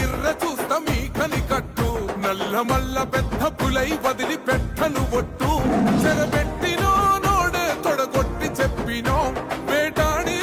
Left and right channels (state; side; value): identical; both; correlation 1.00